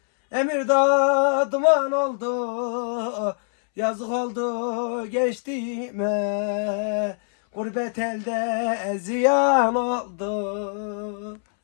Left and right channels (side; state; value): right; silent; 63 dB below the other